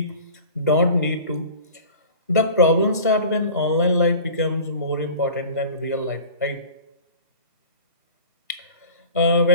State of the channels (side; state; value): both; inverted; correlation -0.41